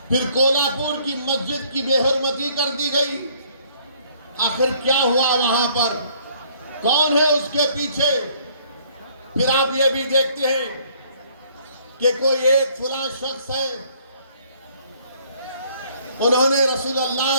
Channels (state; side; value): inverted; both; correlation -0.61